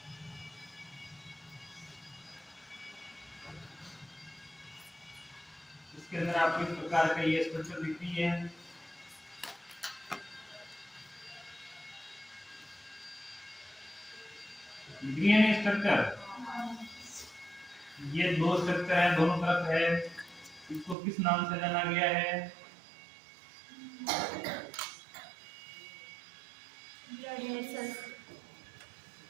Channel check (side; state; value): left; drops out; at 21.0 s